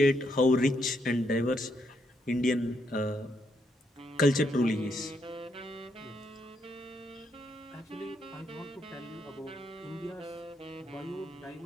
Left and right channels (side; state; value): both; normal; correlation 0.77